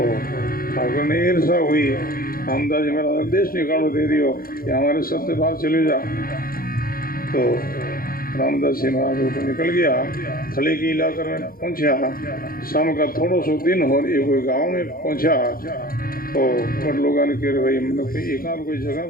ठाकर ने ईर्षा हुई, रामदास जी महाराज देश निकालो दे दियो कि हमारे सत्य बाहर चले जा। तो रामदास जी महाराज ऊपर निकल गया, थले की इलाके में पहुंचा। शाम का थोड़ा सो दिन हो, एक कोई गाँव में पहुंचा। तो बड़ लोगों ने कह भाई मतलब कोई एकांत कोई जगह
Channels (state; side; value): late; right; 0.42 ms